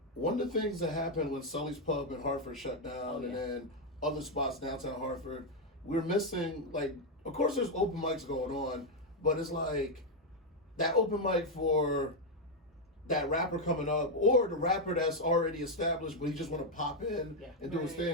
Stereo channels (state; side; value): normal; both; correlation 0.02